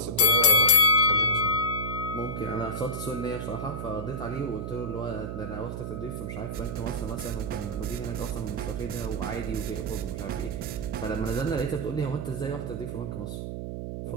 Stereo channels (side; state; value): right; noise; hum, 5 dB below the sound